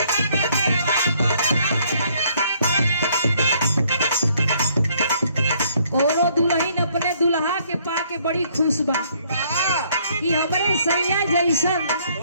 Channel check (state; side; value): inverted; both; correlation -0.65